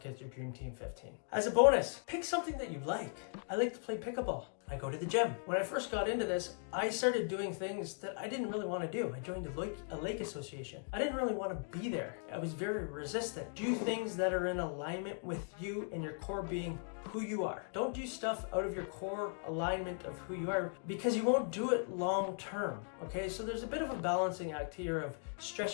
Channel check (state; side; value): silent; right; 52 dB below the other